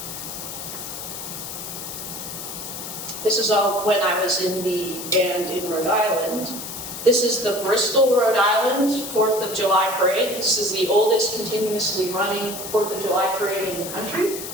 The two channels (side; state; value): left; noise; hiss, 8 dB below the sound